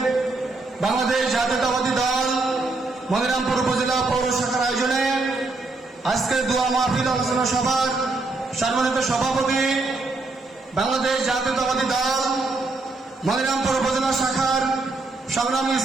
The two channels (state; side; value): quieter; left; 3.4 dB